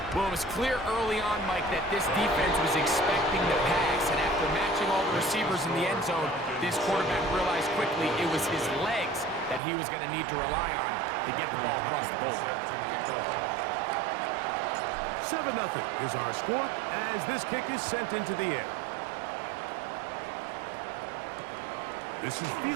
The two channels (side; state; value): left; drops out; at 9.6 s